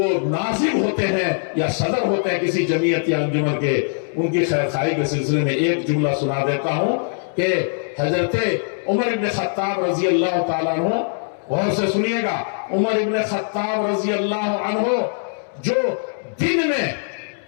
ناظم ہوتے ہیں یا صدر ہوتے ہیں کسی جمعیت یا انجمن کے، ان کی خیر خواہی کے سلسلے میں ایک جملہ سنا دیتا ہوں کہ حضرت عمر ابن خطاب رضی اللہ تعالیٰ عنہ، غور سے سنیے گا، عمر ابن خطاب رضی اللہ عنہ جو دن میں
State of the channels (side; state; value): right; silent; digital silence